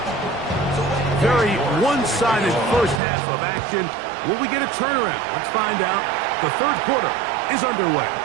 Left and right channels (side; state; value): left; drops out; at 3.0 s